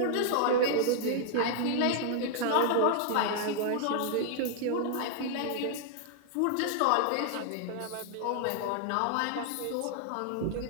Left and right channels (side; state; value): both; different; correlation -0.01